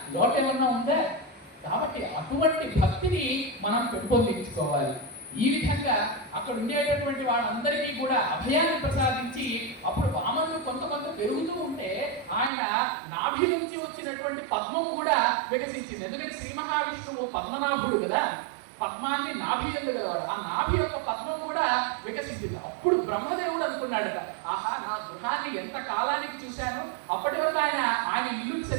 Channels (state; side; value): drops out; left; at 12.5 s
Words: లోటు ఏమన్నా ఉందా? కాబట్టి అటువంటి భక్తిని మనం పెంపొందించుకోవాలి. ఈ విధంగా అక్కడ ఉండేటటువంటి వాళ్ళందరికీ కూడా అభయాన్ని ప్రసాదించి అప్పుడు వామనుడు కొంత పెరుగుతూ ఉంటే ఆయన నాభి నుంచి వచ్చినటువంటి పద్మం కూడా వికసించింది. ఎందుకంటే శ్రీ మహావిష్ణువు పద్మనాభుడు కదా, పద్మాన్ని నాభి ఎందుగలవాడు, ఆ నాభి యొక్క పద్మం కూడా వికసించింది. అప్పుడు బ్రహ్మదేవుడు అనుకున్నాడట, ఆహా నా గృహాన్ని ఎంత కాలానికి చూశాను, అప్పటి వరకు ఆయన ఇల్లుని